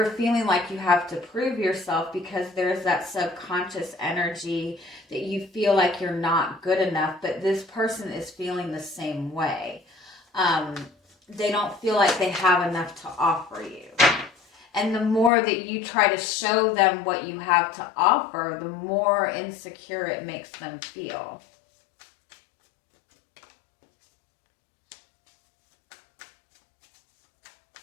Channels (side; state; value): right; drops out; at 15.3 s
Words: feeling like you have to prove yourself because there's that subconscious energy that you feel like you're not good enough, but this person is feeling the same way. They don't feel like they have enough to offer you. And the more that you try to show them what you have to offer, the more insecure it makes them feel.